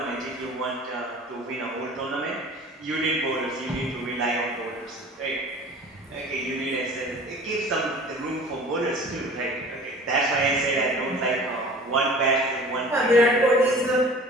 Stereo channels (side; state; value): both; normal; correlation 0.43